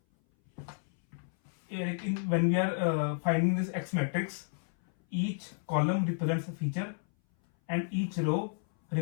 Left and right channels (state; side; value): silent; right; 57 dB below the other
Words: when we are finding this X matrix, each column represents a feature and each row